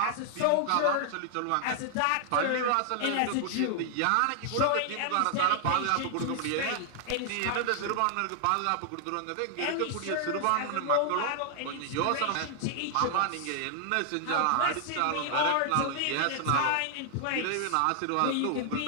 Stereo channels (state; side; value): different; both; correlation 0.00